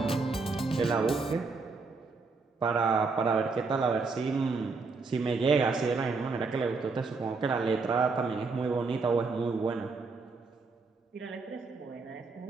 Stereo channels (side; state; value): left; quieter; 4.2 dB